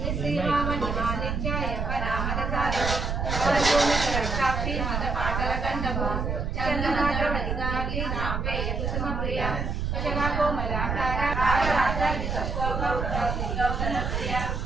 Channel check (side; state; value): right; noise; rumble, 1 dB below the sound